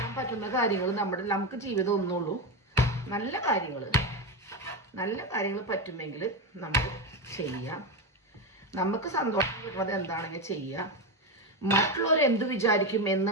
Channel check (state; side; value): normal; both; correlation 0.14